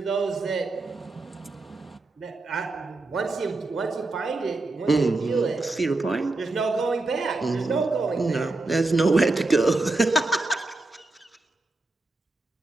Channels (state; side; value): quieter; left; 3.1 dB